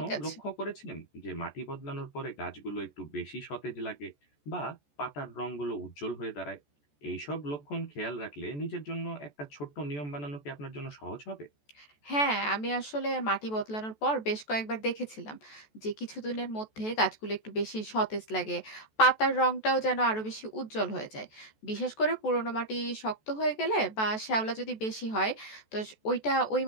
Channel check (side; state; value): right; late; 14 ms